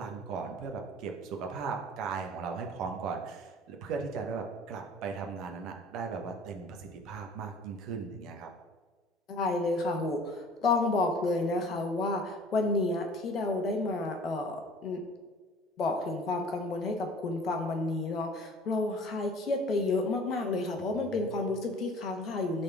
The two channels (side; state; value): both; normal; correlation 0.48